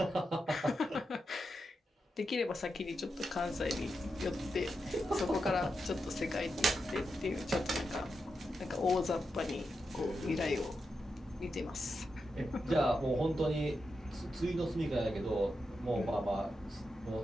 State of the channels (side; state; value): both; normal; correlation 0.87